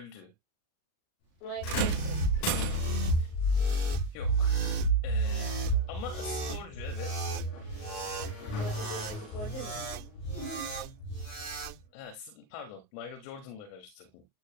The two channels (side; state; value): right; late; 38 ms